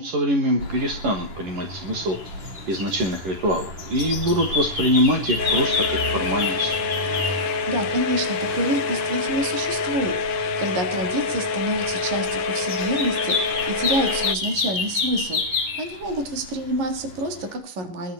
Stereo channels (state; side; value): late; left; 11 ms